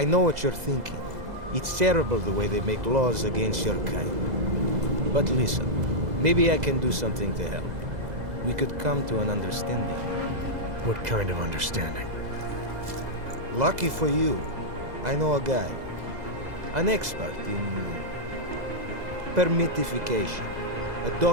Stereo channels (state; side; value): late; left; 2.0 ms